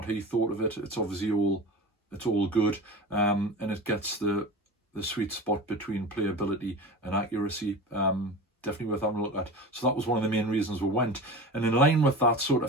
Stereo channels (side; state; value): both; normal; correlation 0.31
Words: he thought of it. It's obviously all good, and it gets the sweet spot between playability and accuracy. Definitely worth having a look at. So that was one of the main reasons we went. And in line with that, sort